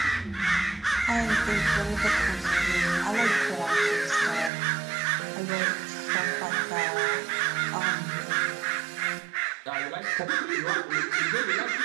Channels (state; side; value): drops out; left; at 4.5 s